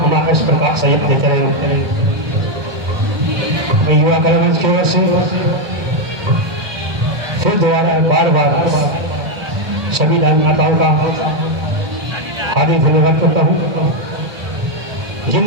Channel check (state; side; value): late; left; 2.1 ms